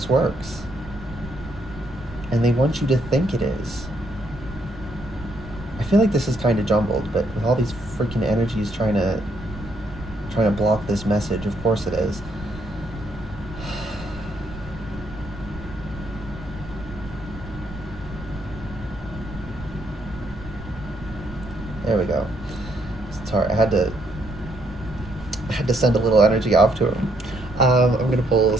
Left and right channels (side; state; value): right; noise; rumble, 15 dB below the sound